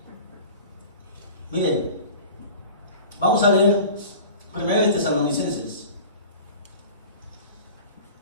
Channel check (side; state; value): both; inverted; correlation -0.40